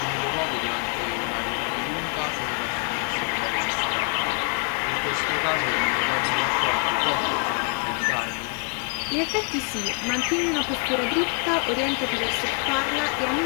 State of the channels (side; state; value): right; quieter; 38.8 dB